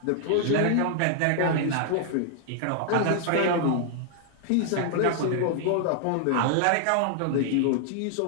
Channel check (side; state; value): both; different; correlation 0.00